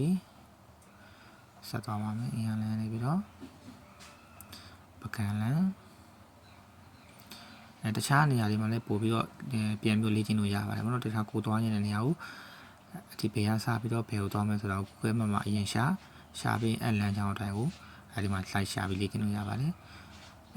ြီ။ဆက်သွားပါမယ်အင်အားလမ်းနေပြီးတော့ပကံလမ်းတခြားနေရာတွေမှာလည်းပို့ပြီးတော့ပြန်ပြီးလေ့ကျင့်လို့ရပါတယ်။ဘာလို့တခြားကိုသွားနေတဲ့နေရာကိုဒီဘယ်ကစပြီးတော့ဘယ်ကိုသွားမလဲဆိုတော့ Google Map မှာအရင်ရှာပြီးလမ်းကြောင်းအတိုင်းကိုအဲဒီမှာ slide ရှာပြီးလေ့ကျင့်လို့ရပါတယ်။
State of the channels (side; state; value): both; identical; correlation 1.00